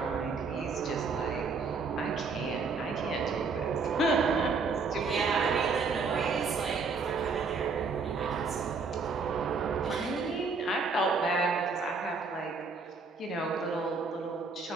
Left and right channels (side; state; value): left; quieter; 4.5 dB